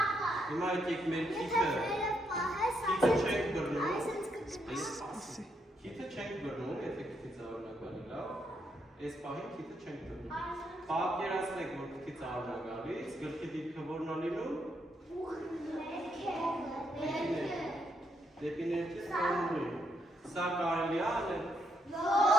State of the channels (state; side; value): normal; both; correlation 0.77